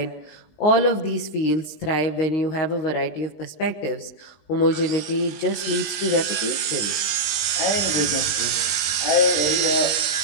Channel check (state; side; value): late; right; 19 ms